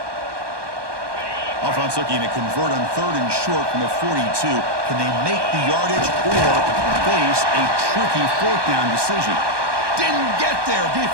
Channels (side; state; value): left; late; 1.2 ms